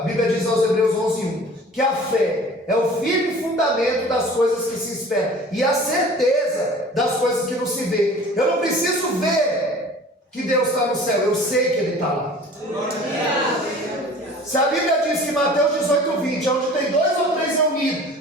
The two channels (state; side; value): normal; both; correlation 0.45